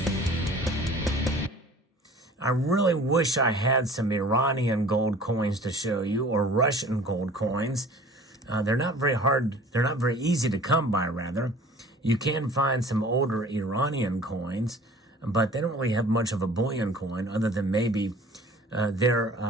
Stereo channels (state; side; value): normal; both; correlation 0.47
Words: I really wish I had some Iranian gold coins to show you, or Russian gold coins. They're not very hard, they're not very easy to come by, rather. You can find some older Iranian coins, but they don't really have much of a bullion coin other than maybe their